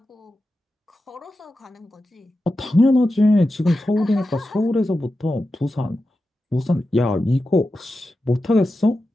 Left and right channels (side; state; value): both; normal; correlation 0.91